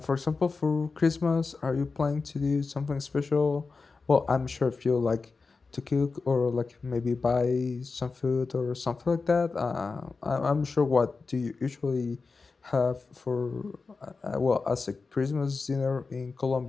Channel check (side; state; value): right; quieter; 4.3 dB